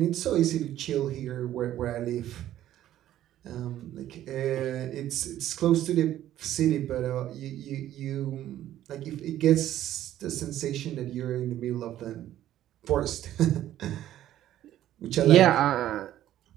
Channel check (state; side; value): quieter; left; 12.6 dB